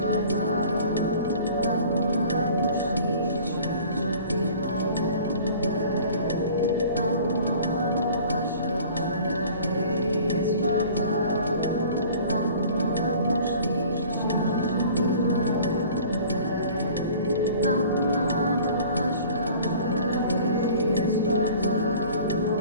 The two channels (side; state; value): both; inverted; correlation -0.47